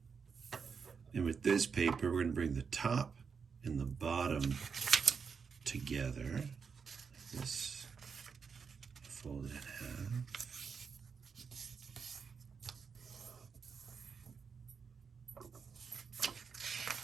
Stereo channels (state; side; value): quieter; left; 5.9 dB